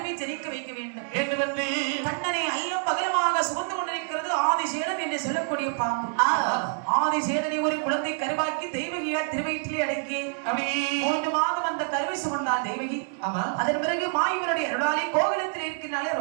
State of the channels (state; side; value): silent; left; 59 dB below the other